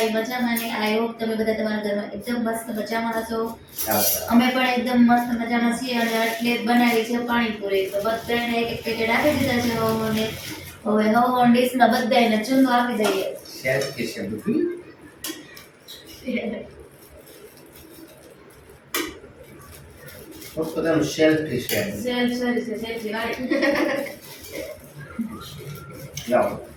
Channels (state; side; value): identical; both; correlation 1.00